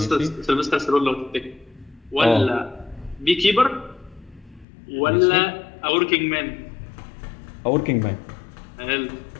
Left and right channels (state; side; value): drops out; right; at 4.7 s